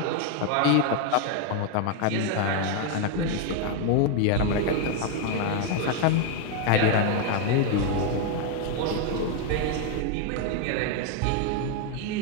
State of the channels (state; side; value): different; both; correlation 0.01